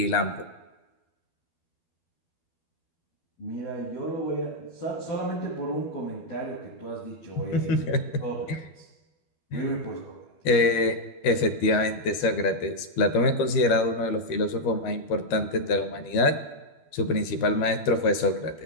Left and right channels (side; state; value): right; late; 12 ms